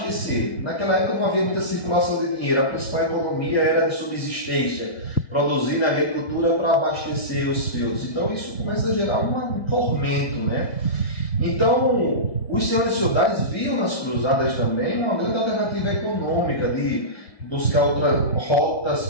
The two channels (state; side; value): late; right; 1.8 ms